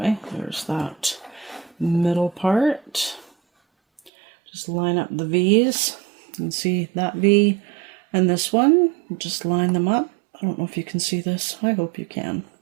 there's that middle part. Just line up the V's. You can see that V and this one. Just line them up. I don't know if you can see this. I hope you can.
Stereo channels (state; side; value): drops out; left; at 4.1 s